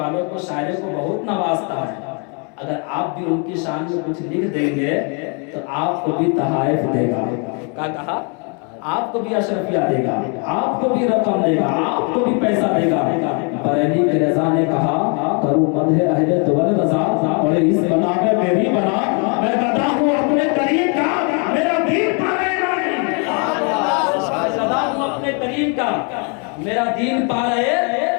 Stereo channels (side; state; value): right; quieter; 36.7 dB